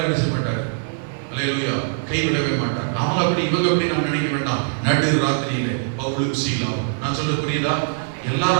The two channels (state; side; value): silent; left; 64 dB below the other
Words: என்ன செய்ய மாட்டார், அல்லேலூயா, கைவிடவே மாட்டார். அவங்க அப்படி இவங்க அப்படி நாம் நினைக்க வேண்டாம். நடு ராத்திரியிலே பவுலும் சீலாவும், நான் சொல்ல புரியுதா? எல்லாரும்